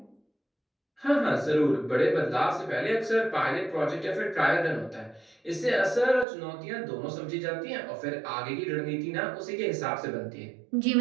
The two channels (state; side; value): drops out; left; at 6.2 s